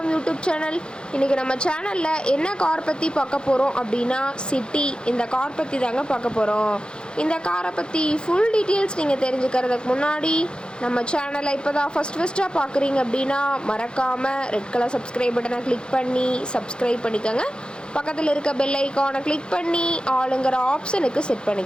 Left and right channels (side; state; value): right; late; 0.050 ms